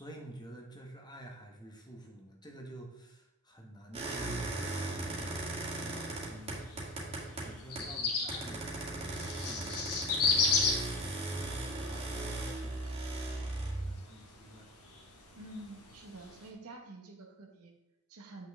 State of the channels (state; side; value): normal; both; correlation 0.33